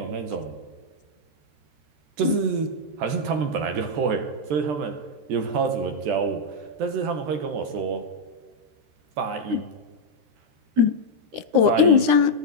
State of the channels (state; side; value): late; left; 14 ms